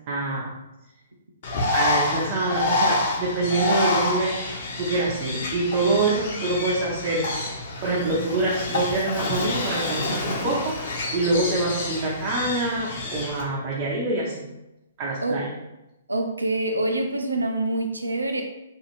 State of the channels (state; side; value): inverted; both; correlation -0.44